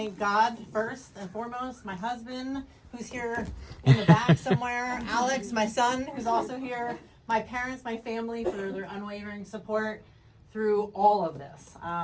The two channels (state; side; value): identical; both; correlation 1.00